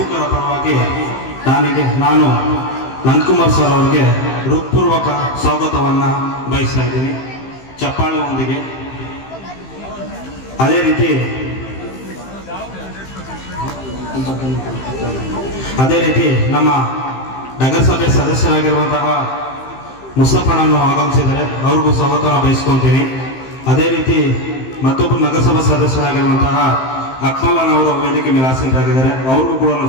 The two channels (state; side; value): late; right; 15 ms